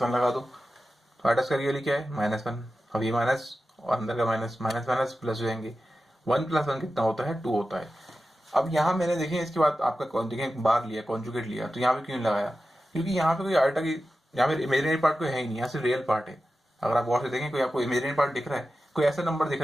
लगा दो। तो आयटा स्क्वायर की वैल्यू क्या है, -1। अब ये माइनस और अंदर का माइनस, माइनस माइनस प्लस हो जाएंगे। 1 + 1 कितना होता है, 2 होता है। अब यहाँ मैंने देखिए इसके बाद आपका देखें बार लिया, कॉन्जुगेट लिया, तो यहाँ पे क्यों लगाया, क्योंकि यहाँ पे कोई आयटा की, यहाँ पे इमेजिनरी पार्ट कोई है ही नहीं, यहाँ सिर्फ रियल पार्ट है। अगर आप गौर से देखें कोई आपको इमेजिनरी पार्ट दिख रहा है, कोई ऐसा नंबर दिख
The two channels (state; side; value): normal; both; correlation 0.93